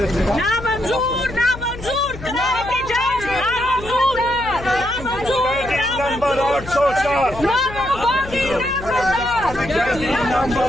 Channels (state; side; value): noise; left; hum, 13 dB below the sound